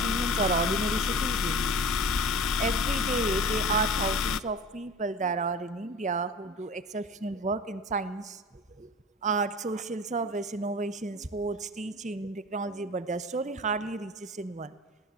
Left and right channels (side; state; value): both; normal; correlation 0.37